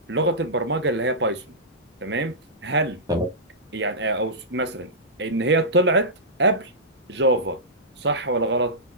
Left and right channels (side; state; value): both; normal; correlation -0.16